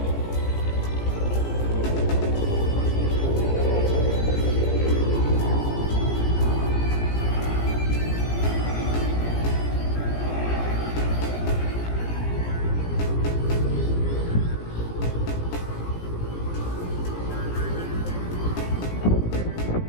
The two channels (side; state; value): right; late; 17 ms